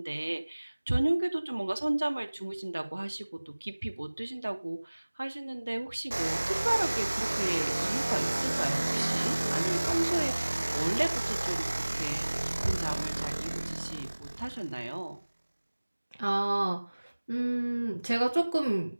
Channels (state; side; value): inverted; both; correlation -1.00